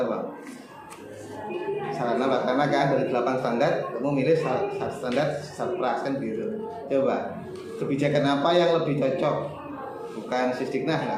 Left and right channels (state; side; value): identical; both; correlation 1.00